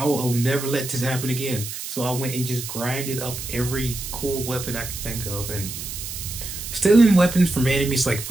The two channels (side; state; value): right; noise; hiss, 8 dB below the sound